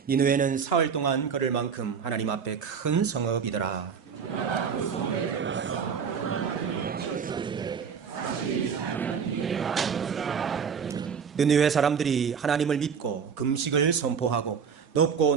니느웨는 사흘 동안 걸을 만큼 하나님 앞에 큰 성읍이더라. 느느웨 사람들이 하나님을 믿고 금식을 선포하고 높고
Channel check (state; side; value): quieter; left; 6.6 dB